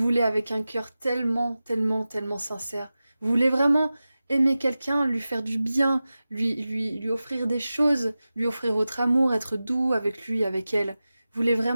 avec un cœur tellement, tellement, tellement sincère. Vous voulez vraiment aimer quelqu'un, lui faire du bien, lui offrir des choses, lui offrir votre amour, être doux avec lui, avec elle. Vous voulez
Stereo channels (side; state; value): both; inverted; correlation -0.95